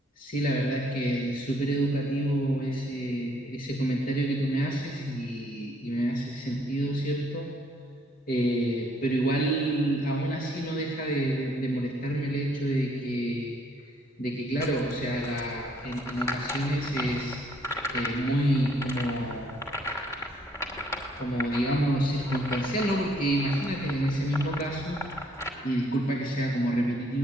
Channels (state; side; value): normal; both; correlation 0.66